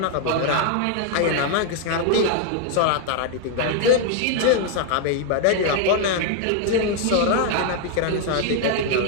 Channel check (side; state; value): both; different; correlation 0.00